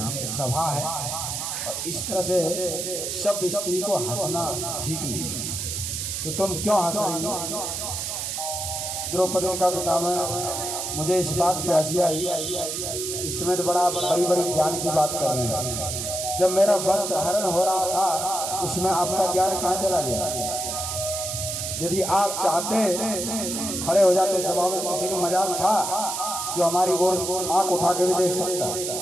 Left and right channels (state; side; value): noise; right; hiss, 3 dB below the sound